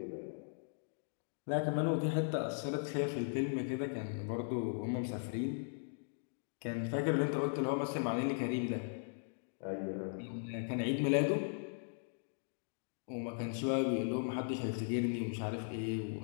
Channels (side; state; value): right; silent; digital silence